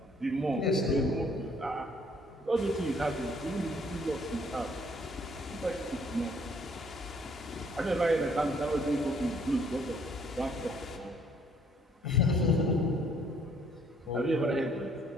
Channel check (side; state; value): both; normal; correlation 0.64